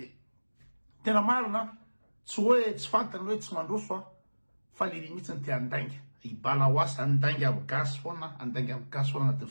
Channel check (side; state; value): both; inverted; correlation -1.00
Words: tena marina tsy hoe tsy fantany hoe tsy mandroso fa le mihitsy ny te andainga ibala hoasy andainga aby gasy foana andainga aby gasy foana